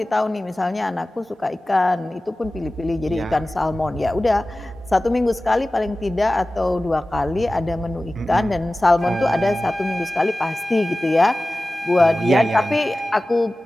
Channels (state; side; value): normal; both; correlation 0.96